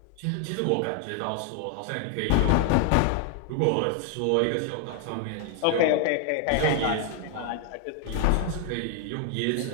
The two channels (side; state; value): both; different; correlation 0.01